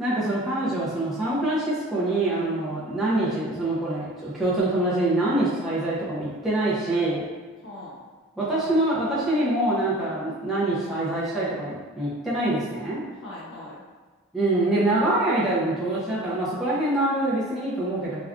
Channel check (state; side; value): normal; both; correlation 0.44